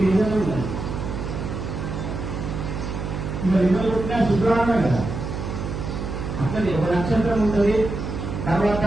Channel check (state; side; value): noise; right; hum, 5 dB below the sound